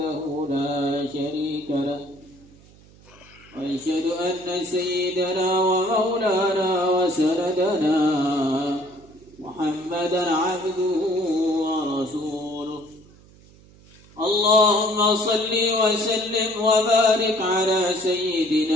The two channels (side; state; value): right; noise; hum, 25 dB below the sound